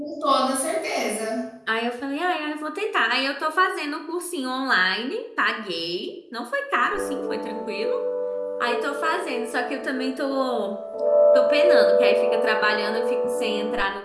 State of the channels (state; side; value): identical; both; correlation 1.00